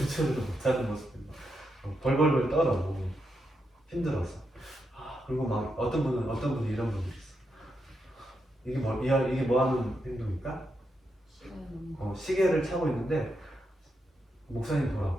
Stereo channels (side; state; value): both; normal; correlation 0.83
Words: 못하는 모습이 벌벌벌 떨어 힘들어서 그리고 막 어떤 분이 이런 분이 있어. 이게 뭐 하는 행동일까? 시계를 차고 있는데 목사님